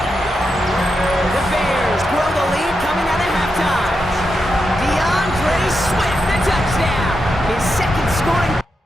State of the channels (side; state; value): both; normal; correlation 0.86